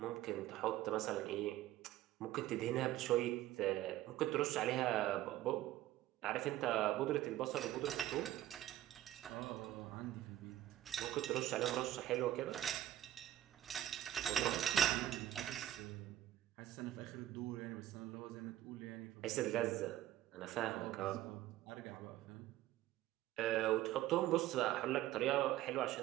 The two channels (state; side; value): quieter; left; 13.6 dB